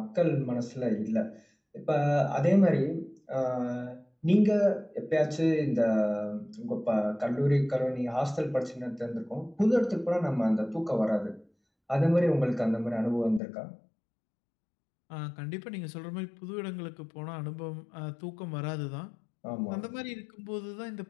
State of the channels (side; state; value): right; drops out; at 13.4 s